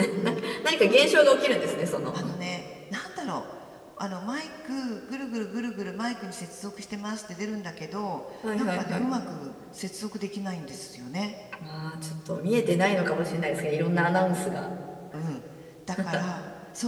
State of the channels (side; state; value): both; identical; correlation 1.00